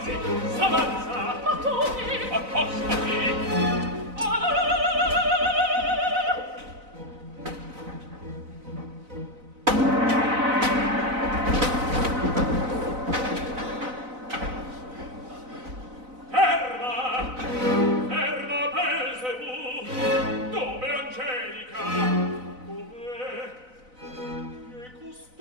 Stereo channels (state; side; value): late; left; 4.0 ms